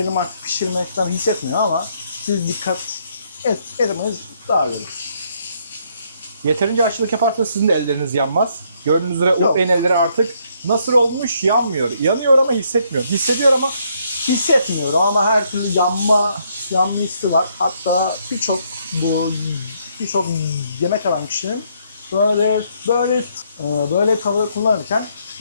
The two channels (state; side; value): inverted; both; correlation -0.71